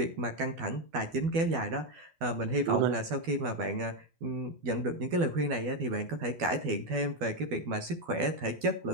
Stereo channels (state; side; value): late; left; 12 ms